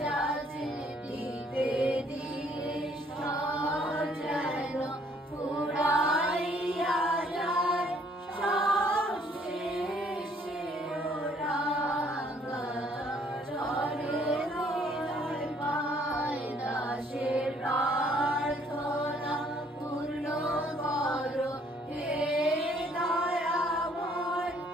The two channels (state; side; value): normal; both; correlation 0.63